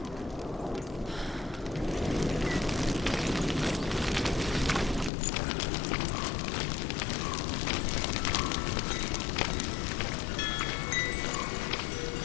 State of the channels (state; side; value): drops out; right; at 5.1 s